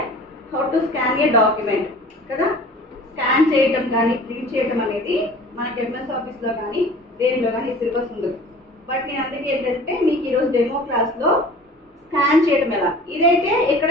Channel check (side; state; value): both; normal; correlation 0.44